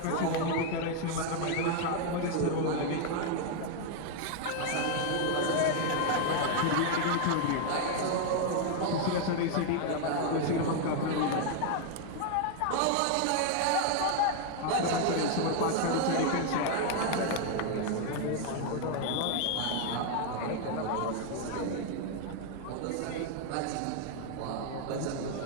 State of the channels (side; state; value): both; different; correlation 0.00